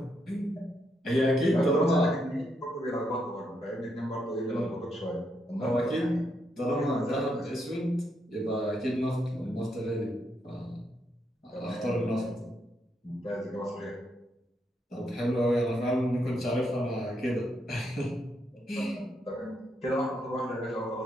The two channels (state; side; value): normal; both; correlation 0.78